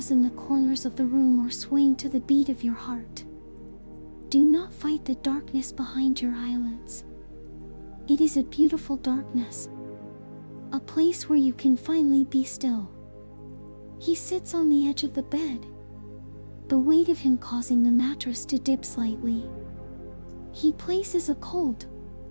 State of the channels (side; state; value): both; inverted; correlation -1.00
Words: in the corners of the room are swaying to the beat of your heart. Do not fight the darkness behind your eyelids. It is a beautiful darkness, a place where you can finally be still. He sits on the edge of the bed, the weight of him causing the mattress to dip slightly. He places a cold,